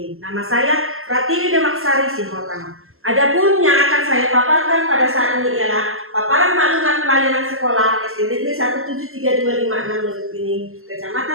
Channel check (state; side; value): late; left; 0.62 ms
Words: Nama saya Pratiwi Demaksari Simotang. Adapun yang akan saya paparkan pada saat ini ialah paparan maklumat pelayanan sekolah SD Negeri 17326 Lubukpining,